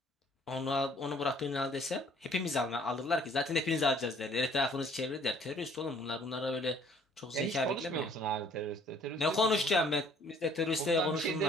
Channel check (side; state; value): both; normal; correlation 0.58